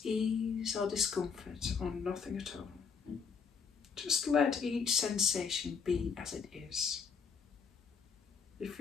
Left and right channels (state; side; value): quieter; right; 6.0 dB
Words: ease or discomfort or nothing at all. Just let each sensation be as it is. If